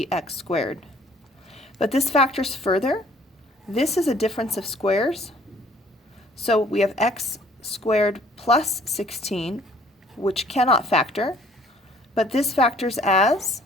x squared. But this factors further. This is a difference of squares. So we have x squared plus 16, which cannot factor, but this factors as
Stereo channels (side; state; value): both; normal; correlation 0.57